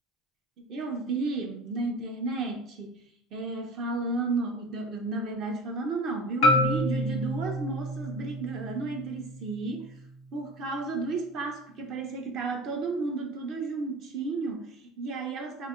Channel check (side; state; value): both; normal; correlation 0.36